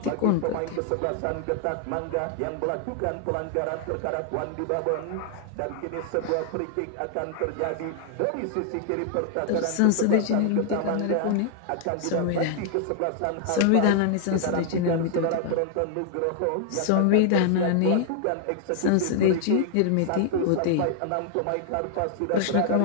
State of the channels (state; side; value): different; both; correlation 0.00